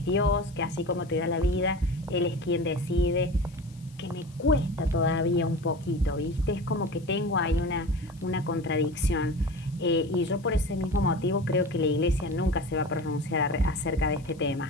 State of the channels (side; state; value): left; noise; hiss, 27 dB below the sound